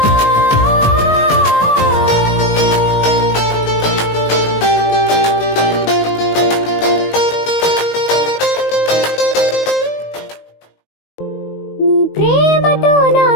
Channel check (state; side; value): late; right; 19 ms